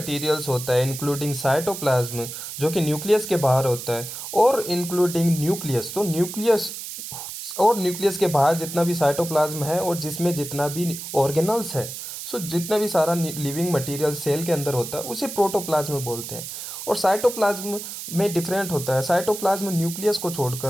होता है इंक्लूडिंग साइटोप्लाज्म जो कि न्यूक्लियस के बाहर होता है, और इंक्लूडिंग न्यूक्लियस, तो न्यूक्लियस और न्यूक्लियस के बाहर जितना भी साइटोप्लाज्म है और जिसमें जितना भी ऑर्गेनल्स है, सो जितना भी सारा लिविंग मटेरियल सेल के अंदर होता है उसे प्रोटोप्लाज्म बोलते हैं। और साइटोप्लाज्म में डिफरेंट होता है, साइटोप्लाज्म न्यूक्लियस को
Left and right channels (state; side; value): noise; right; hiss, 9 dB below the sound